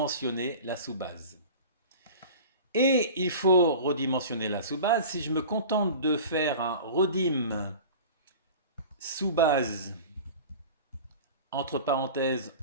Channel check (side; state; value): both; inverted; correlation -0.37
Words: la sous-base. Et il faut redimensionner la sous-base. Si je me contente de faire un redim sous-base, entre parenthèses,